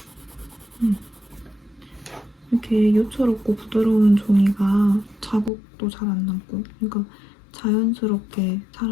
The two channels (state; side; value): drops out; right; at 5.5 s